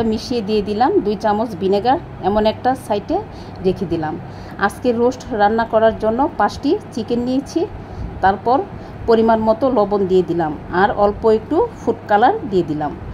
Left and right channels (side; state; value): both; identical; correlation 1.00